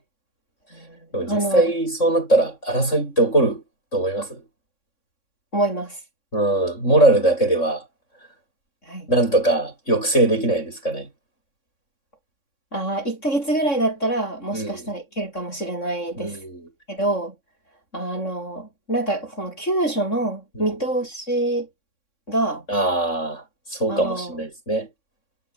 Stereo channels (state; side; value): late; right; 3.6 ms